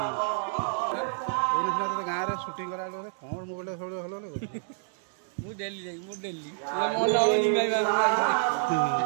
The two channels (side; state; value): left; silent; digital silence